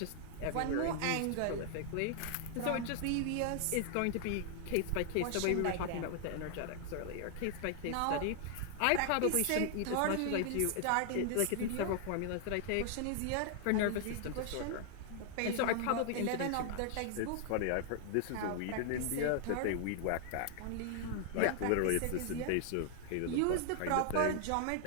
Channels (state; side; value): different; both; correlation 0.00